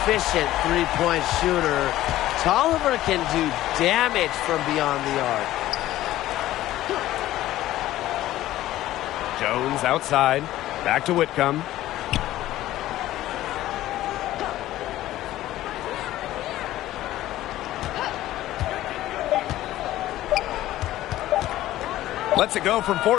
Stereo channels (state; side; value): quieter; right; 14.8 dB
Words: three-point shooter. Tolliver can do damage from beyond the arc. Jones outside. Back to Whitcomb. Lets it go from